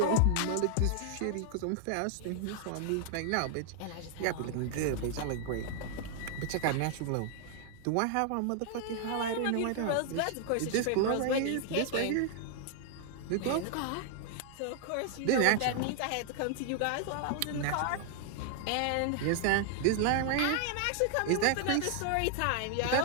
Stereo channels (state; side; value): different; both; correlation 0.00